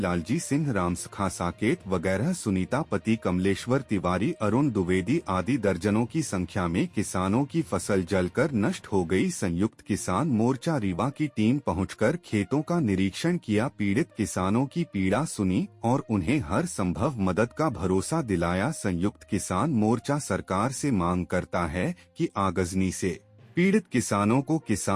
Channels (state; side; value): identical; both; correlation 1.00